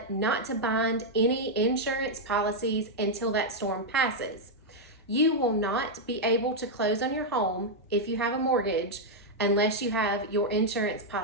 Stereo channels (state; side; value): normal; both; correlation -0.03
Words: not to bind any insurance policies until that storm passes. You will not be able to close on your home if you have a mortgage unless you have your insurance